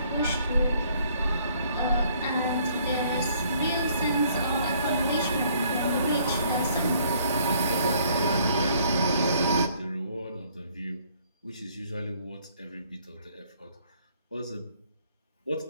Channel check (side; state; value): both; inverted; correlation -0.63